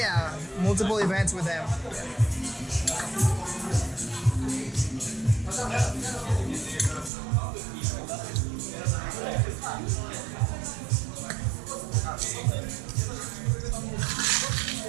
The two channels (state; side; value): drops out; left; at 7.1 s